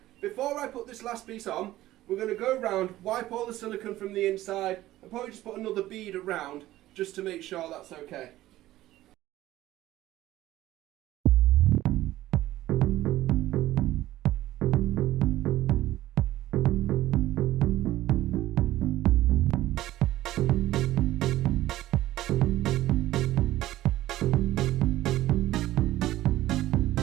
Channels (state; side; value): quieter; left; 15.4 dB